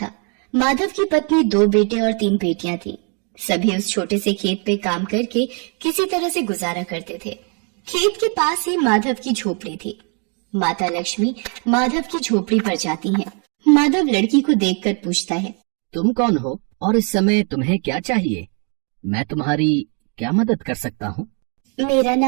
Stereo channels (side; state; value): left; quieter; 37.7 dB